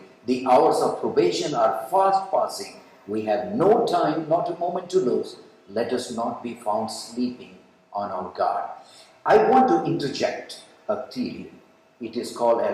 The hours of probation are fast passing. We have no time, not a moment to lose. Let us not be found sleeping on our guard. I want to interject a theory. It is called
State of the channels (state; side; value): identical; both; correlation 1.00